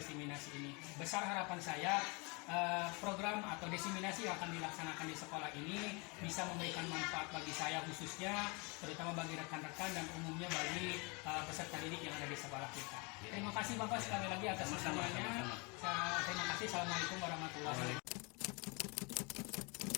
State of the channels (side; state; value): right; quieter; 30.1 dB